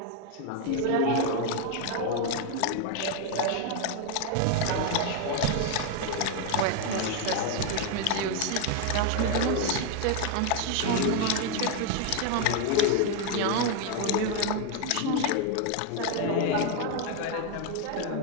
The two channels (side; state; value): both; different; correlation 0.01